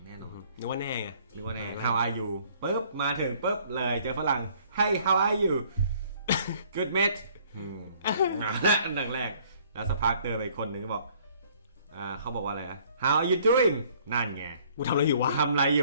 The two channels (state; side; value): inverted; both; correlation -0.59